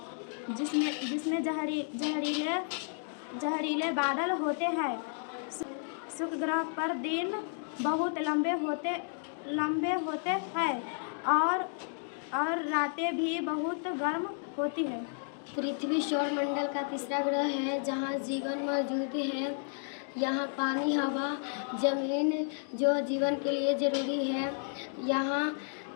जिसमें जहरीले बादल होते हैं। शुक्र ग्रह पर दिन बहुत लंबे होते हैं और रातें भी बहुत गर्म होती हैं। पृथ्वी सौरमंडल का तीसरा ग्रह है जहाँ जीवन मौजूद है। यहाँ पानी, हवा, जमीन जो जीवन के लिए ज़रूरी है। यहाँ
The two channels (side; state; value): right; silent; 56 dB below the other